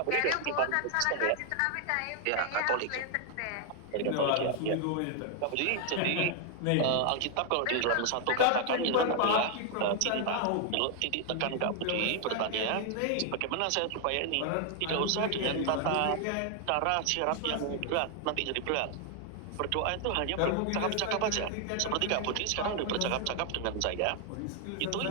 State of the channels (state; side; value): different; both; correlation 0.00